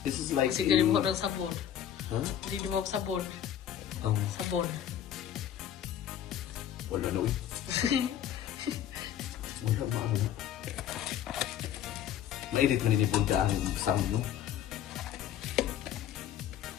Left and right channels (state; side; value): quieter; right; 10.4 dB